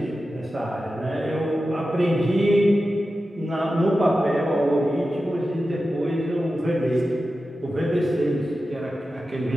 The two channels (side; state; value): both; normal; correlation 0.92